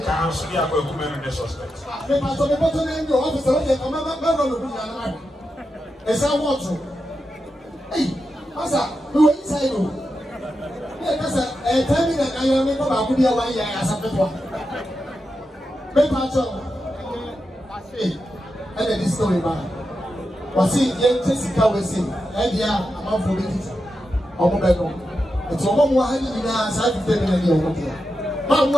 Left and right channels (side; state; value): both; normal; correlation 0.88